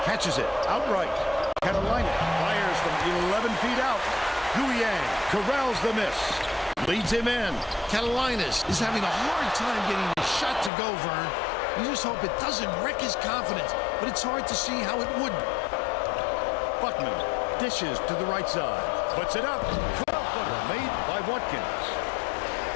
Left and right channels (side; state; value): right; drops out; at 10.7 s